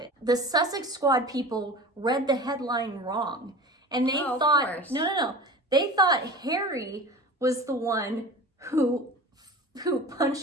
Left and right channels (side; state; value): both; normal; correlation 0.35